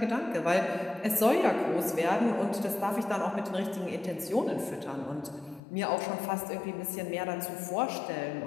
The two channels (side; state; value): right; drops out; at 5.6 s